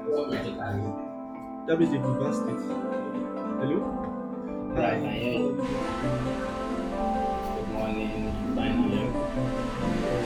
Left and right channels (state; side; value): identical; both; correlation 1.00